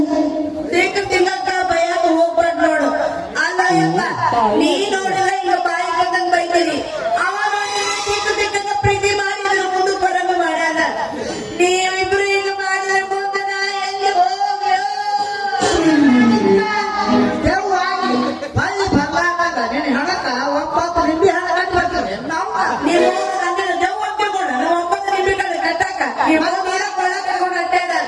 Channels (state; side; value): identical; both; correlation 1.00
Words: ತಿನ್ನಕ್ಕ ಬಯಕ ಹೋಗ್ಬಾರ್ದು ನೋಡು. ಅಲ್ಲ ಯಪ್ಪ, ನೀ ನೋಡಿದ್ರೆ ಈಗ ಬಾಯಿ ಬಂದಂಗ್ ಬೈತೀರಿ. ಅವ ನೋಡಿದ್ರೆ ತಿಕ್ಕಂಗ ಪ್ರೀತಿ ಮಾಡಿದ್ರೆ ಮುಂದಕ್ಕೆ ಬರಂಗ ಮಾಡ್ಯಾನ. ನೀವಿಬ್ರು ಈಗ ಮಾಡಿದ್ರೆ ಮುಂದೆ ನಾ ಎಲ್ಲಿ ಹೋಗ್ಲೋ? ದೇವಾಗಿ ಬಳ್ಳಿ ಬರ್ಲಾರ್ದಾಗ ನಿನ್ನ ಹಣಕ್ಕ 9 ನಿಂಬೆ ಹಣ ಕಟ್ಟಿ ಬರ್ತಾರೆ ನಾವು. ನೀವು ನನ್ನ ದೇವ್ ಅಂತಿಕೊಂಡ 9 ನಿಮಿಷ ಕಟ್ಟಾಕ ನೀವು ನೀರ ಕೊಳ್ಳ ಕಟ್ಕೊಂಡು ಅಡ್ಡಾಡ.